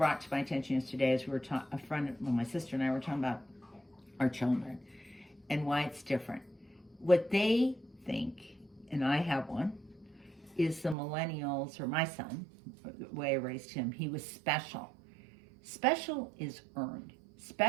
to my attention yesterday is my sister and I were talking about our children and why it's different. What they think, and I have one, is the millennials, or my son, the way I raised him, he was special. Special is earned.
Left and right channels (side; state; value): left; drops out; at 11.0 s